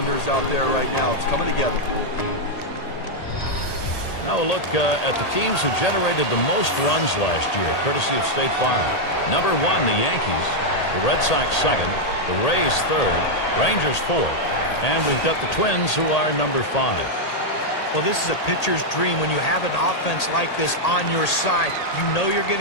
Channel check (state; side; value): late; right; 1.8 ms